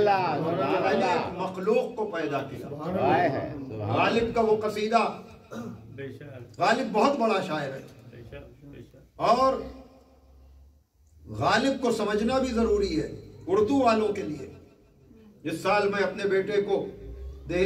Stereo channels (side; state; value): both; identical; correlation 1.00